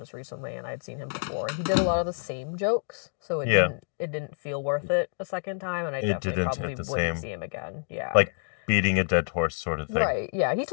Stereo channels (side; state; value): right; silent; digital silence